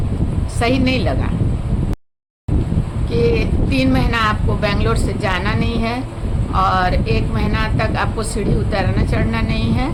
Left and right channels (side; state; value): both; identical; correlation 1.00